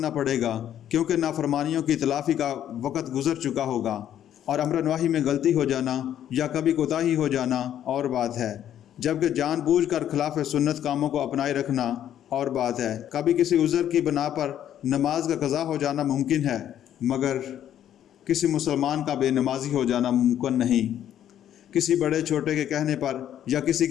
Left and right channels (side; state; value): right; quieter; 10.7 dB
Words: پڑے گا، کیونکہ نافرمانیوں کی تلافی کا وقت گزر چکا ہوگا، اور امر نواہی میں غلطی ہو جانا یا کبھی کوتاہی ہو جانا اور بات ہے، جبکہ جان بوجھ کر خلاف سنت کاموں کو اپنائے رکھنا اور بات ہے۔ کبھی کسی عذر کی بنا پر نماز کا قضا ہو جانا ممکن ہے مگر کسی مسلمان کا بے نمازی ہو جانا ممکن نہیں۔ کسی بڑے چھوٹے کے کہنے پر یا کسی